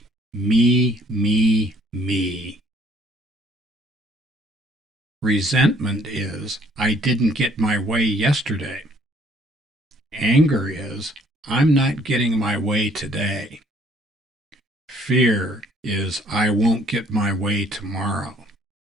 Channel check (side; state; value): both; normal; correlation 0.62